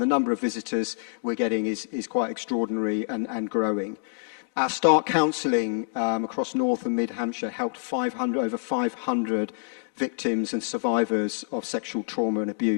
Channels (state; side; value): silent; right; digital silence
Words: the number of visitors we're getting is quite extraordinary and growing. Our Start Counselling across North and Mid Hampshire helped over 500 victims and survivors of sexual trauma and